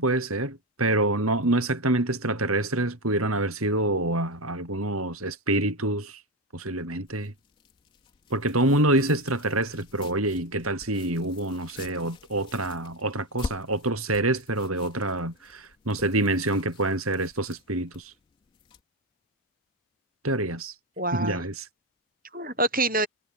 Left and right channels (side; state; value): both; normal; correlation 0.12